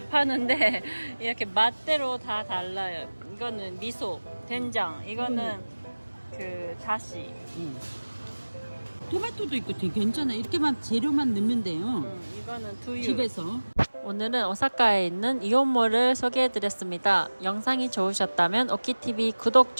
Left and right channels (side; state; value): both; inverted; correlation -1.00